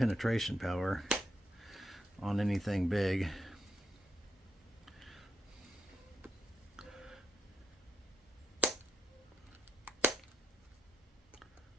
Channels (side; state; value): both; normal; correlation 0.80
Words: power on anything big.